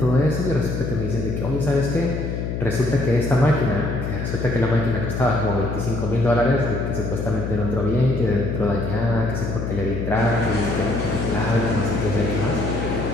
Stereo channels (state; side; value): noise; left; hum, 3 dB below the sound